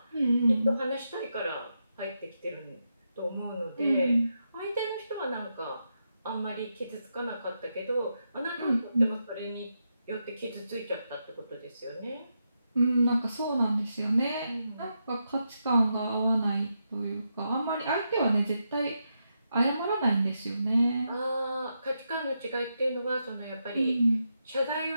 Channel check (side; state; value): both; inverted; correlation -0.85